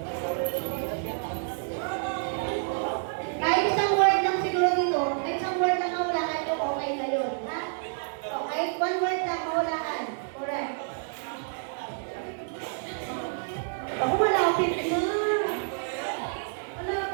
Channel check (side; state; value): left; silent; digital silence